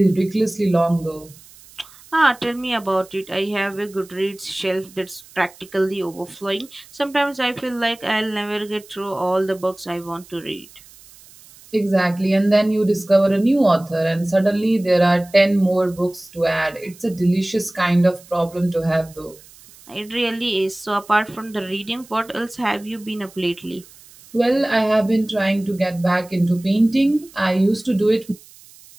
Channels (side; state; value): right; noise; hiss, 23 dB below the sound